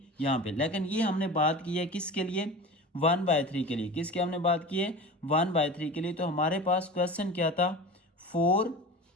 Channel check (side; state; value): both; normal; correlation 0.33